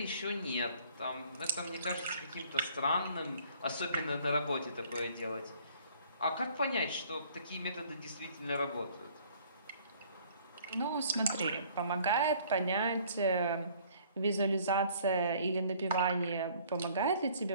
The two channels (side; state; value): both; inverted; correlation -0.57